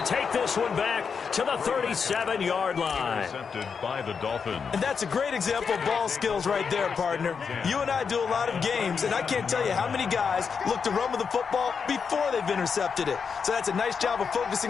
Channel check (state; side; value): quieter; right; 6.0 dB